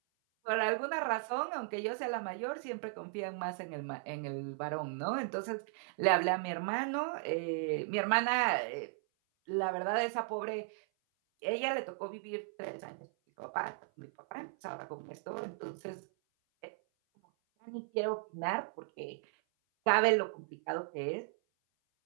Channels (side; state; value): left; silent; 53 dB below the other